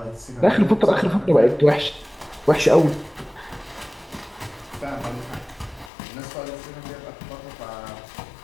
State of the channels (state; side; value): drops out; right; at 5.9 s